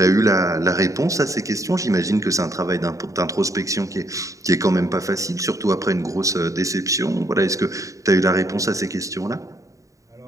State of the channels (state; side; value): late; left; 0.16 ms